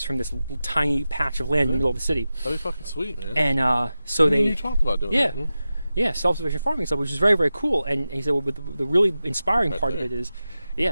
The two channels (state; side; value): inverted; both; correlation -0.93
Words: from this tiny patch of land in the middle of the city. That'd be fucking sweet, man. And so You talked about doing that. Yeah, self-sufficient farming stuff, which is very, very cool. And he said, well, but the really inspiring part of it is,